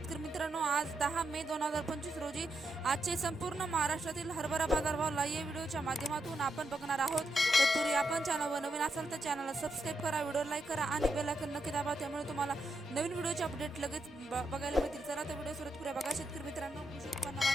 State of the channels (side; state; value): both; normal; correlation 0.83